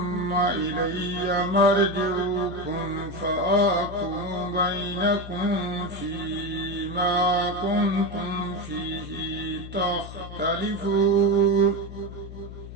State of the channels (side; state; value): left; noise; hum, 12 dB below the sound